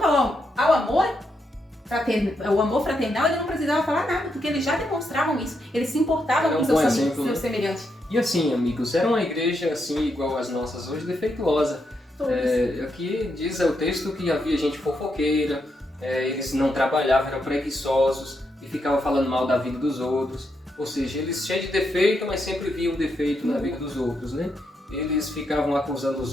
ao amor o amor fraternal, ele não precisava falar nada, porque eles já demonstravam isso, eles se importavam com seus semelhantes. E assim, amigos, era uma igreja assim, igual as nossas hoje, defeituosa. Aqui diz o texto que havia gente fofoqueira, eles não trabalhavam, eram preguiçosos e ficavam falando mal da vida dos outros. Ou seja, eles cheios de defeito, mas sempre viam defeito na vida dos outros, né? Eles ficavam acusando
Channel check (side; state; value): both; normal; correlation 0.81